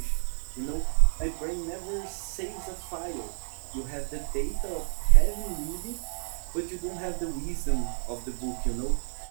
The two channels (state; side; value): silent; left; digital silence